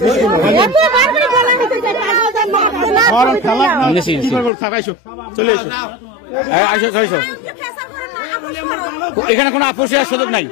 চলে এসো আসো এখানে কোনো আপোষের সুযোগ নাই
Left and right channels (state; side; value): drops out; right; at 4.5 s